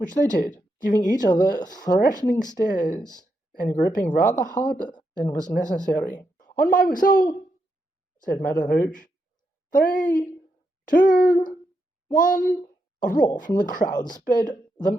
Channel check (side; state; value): both; normal; correlation 0.82